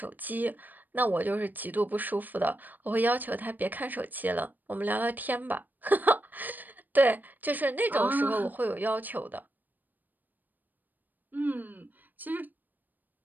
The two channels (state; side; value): late; left; 0.087 ms